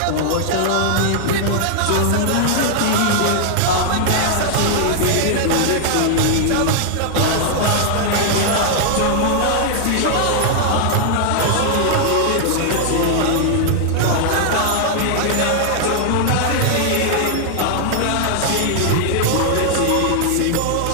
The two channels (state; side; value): different; both; correlation -0.01